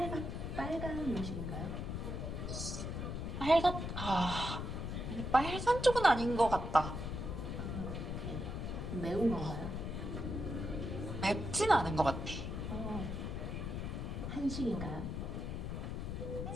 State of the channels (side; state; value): left; noise; rumble, 4 dB below the sound